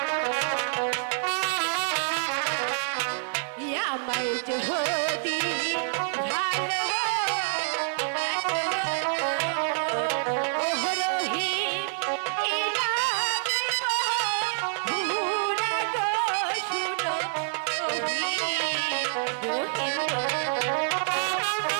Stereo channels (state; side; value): silent; left; 60 dB below the other